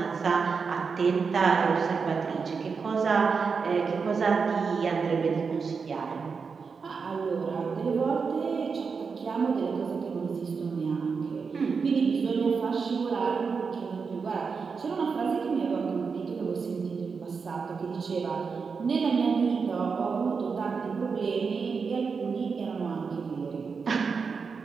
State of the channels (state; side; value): quieter; left; 5.3 dB